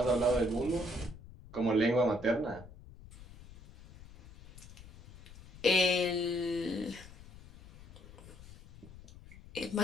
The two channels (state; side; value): noise; left; rumble, 19 dB below the sound